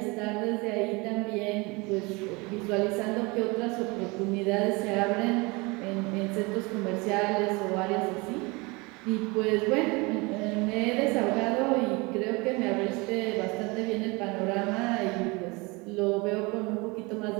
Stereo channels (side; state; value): left; quieter; 26.2 dB